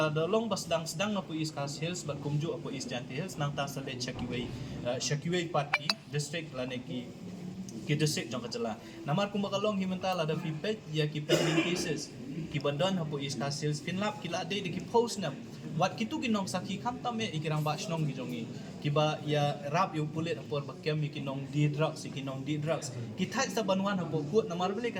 dalong bas sedang apo East Coast Hills bat kumju apo East Giant Hills nang ta salet Shakiway party district la ni ki district jong kajala namar kum bakalong himenta la da fipet ya ki pending cases ki bandon hapo East Coast Hills finlap ki la de ki post na wat kitu kinong saki kam tame ikirang ba snong gi jongi kiba ya rap yu pulit apor bakem kinong di drugs ki thai sa banwan hapo court namar bele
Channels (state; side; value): identical; both; correlation 1.00